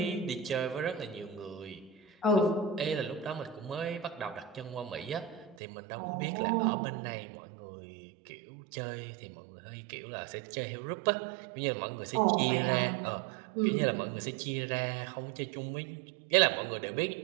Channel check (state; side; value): drops out; left; at 5.6 s